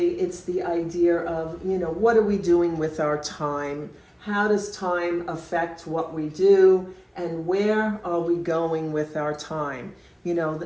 it's the idea of what are we doing with our time? How does time affect what we do? And where are we going with our time?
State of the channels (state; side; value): identical; both; correlation 1.00